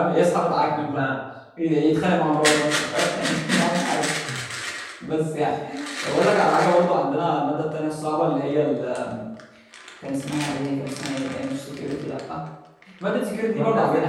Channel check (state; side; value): identical; both; correlation 1.00